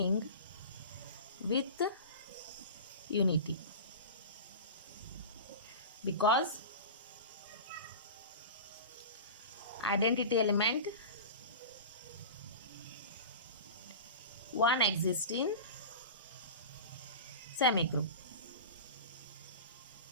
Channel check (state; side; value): inverted; both; correlation -0.32